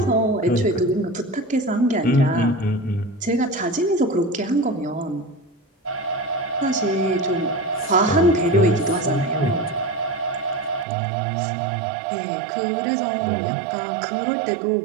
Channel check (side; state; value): left; drops out; at 10.9 s